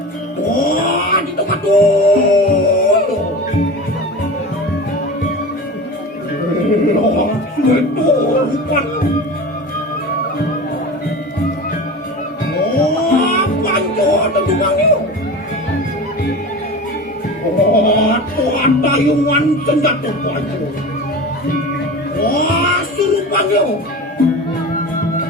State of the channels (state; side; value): normal; both; correlation 0.32